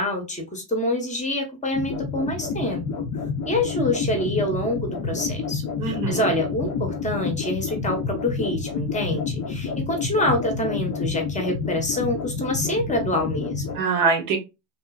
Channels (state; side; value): normal; both; correlation 0.08